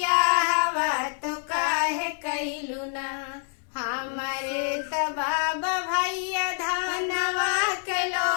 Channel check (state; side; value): silent; right; 61 dB below the other